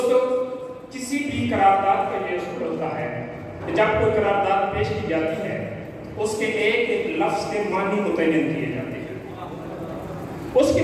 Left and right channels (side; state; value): both; identical; correlation 1.00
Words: کسی بھی قرارداد کا یہ اصول ہوتا ہے کہ جب کوئی قرارداد پیش کی جاتی ہے اس کے ایک ایک لفظ کے معنی متعین کیے جاتے ہیں اس